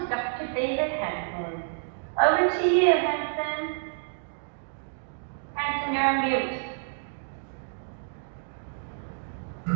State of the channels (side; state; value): left; silent; digital silence